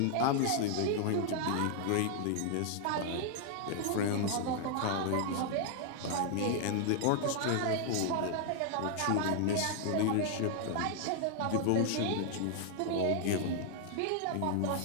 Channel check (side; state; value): both; different; correlation 0.00